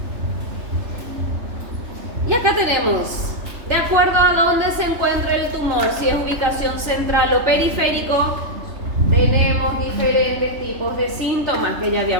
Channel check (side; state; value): left; late; 3.3 ms